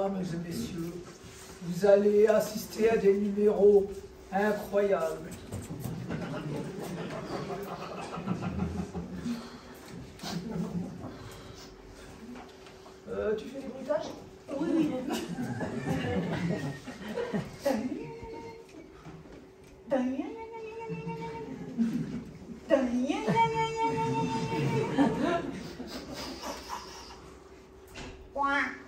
et messieurs, vous allez assister à des numéros incroyables. Tu fais des bruitages? Oui, oui.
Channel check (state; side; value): identical; both; correlation 1.00